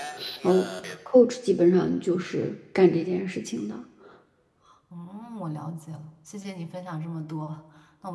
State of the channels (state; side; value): identical; both; correlation 1.00